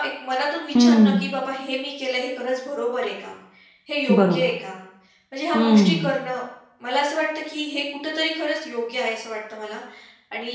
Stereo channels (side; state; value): both; identical; correlation 1.00